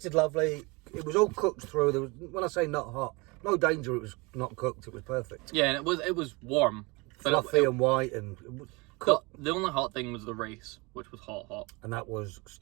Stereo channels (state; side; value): quieter; left; 26.5 dB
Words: lovely. It was all cooked through. There was, when I say not hot, no danger it was not cooked. It was perfect. Yeah, and it was warm. But Fluffy and white and cooked. The only hot thing was the rice, which was hot. And that was